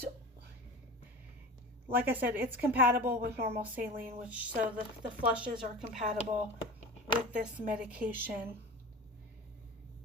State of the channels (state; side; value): normal; both; correlation 0.33